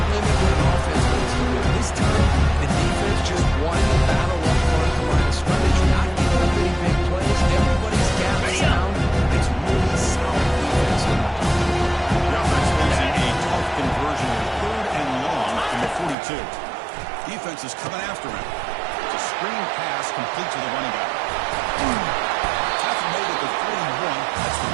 what an offense needs to do. This time, the defense just won the battle up front at the line of scrimmage. Not giving up any big plays. Everybody's gapped sound. It's really solid defense now. The offense losing a tough conversion in third and long from the 42. Defense is coming after him. It's a screen pass complete to the running back. Tackle made at the 41. That's the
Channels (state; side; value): drops out; left; at 16.2 s